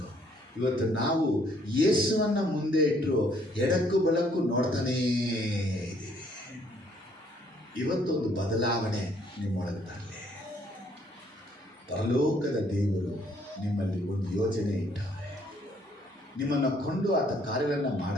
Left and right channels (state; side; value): normal; both; correlation 0.65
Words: ಇವತ್ತು ನಾವು ಯೇಸುವನ್ನ ಮುಂದೆ ಇಟ್ಟರು ಎಡಕ್ಕೂ ಬಲಕ್ಕೂ ನೋಡ್ತಾನೇ ಇದ್ದೀವಿ. ಇವತ್ತೊಂದು ಬದಲಾವಣೆ ನಿಮ್ಮೊಳಗೆ ತರಲಿ. ಪರಲೋಕದ ದೇವರು ನಿಮ್ಮಲ್ಲಿ ಒಂದು ಯೋಜನೆ ಇಟ್ಟವ್ರೆ. ನಿಮ್ಮನ್ನು ಕೊಂಡು ಆತ ಕಾರ್ಯಗಳನ್ನು